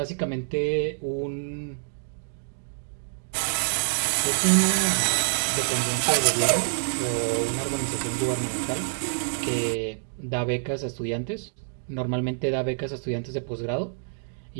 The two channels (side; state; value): left; silent; digital silence